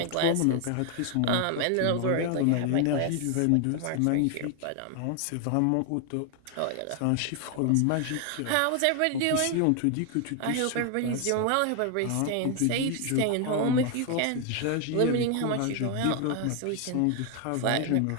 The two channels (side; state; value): both; different; correlation 0.01